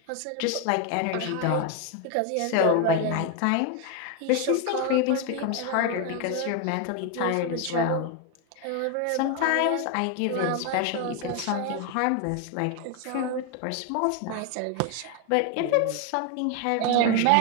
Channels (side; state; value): both; different; correlation 0.01